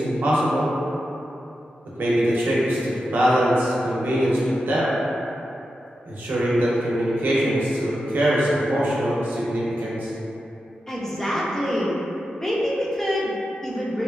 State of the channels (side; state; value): both; normal; correlation 0.89